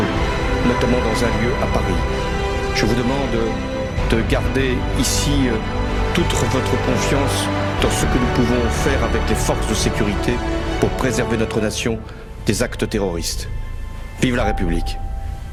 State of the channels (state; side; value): identical; both; correlation 1.00